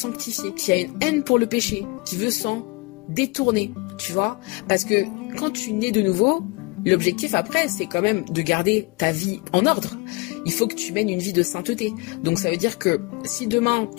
qui a une haine pour le péché, qui veut s'en détourner, tu vois. Parce que quand tu nais de nouveau, L'objectif après, c'est quand même de garder ta vie en ordre. Il faut que tu mènes une vie de sainteté. Donc ça veut dire que si demain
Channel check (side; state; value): right; quieter; 26.6 dB